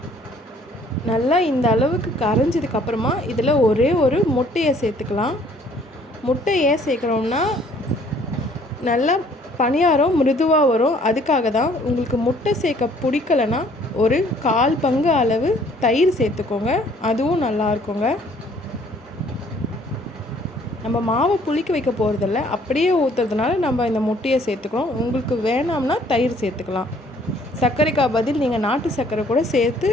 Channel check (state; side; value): normal; both; correlation 0.59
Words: நல்லா இந்த அளவுக்கு கரைஞ்சதுக்கப்புறமா இதில் ஒரே ஒரு முட்டையை சேர்த்துக்கலாம். முட்டை ஏன் சேர்க்குறோம்னா நல்லா பணியாரம் மிருதுவாக வரும். அதுக்காக தான். உங்களுக்கு முட்டை சேர்க்க பிடிக்கலைன்னா ஒரு 1/4 பங்கு அளவு தயிர் சேர்த்துக்கோங்க. அதுவும் நல்லா இருக்குங்க. நம்ம மாவை புளிக்க வைக்க போகிறதில்ல, அப்படியே ஊற்றுறதுனால நம்ம இந்த முட்டையை சேர்த்துக்கிறோம். உங்களுக்கு வேணாம்னா தயிர் சேர்த்துக்கலாம். சர்க்கரைக்கா பதில் நீங்கள் நாட்டு சர்க்கரை கூட சேர்த்து